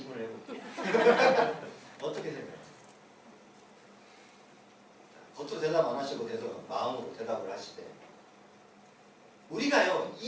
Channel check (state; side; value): identical; both; correlation 1.00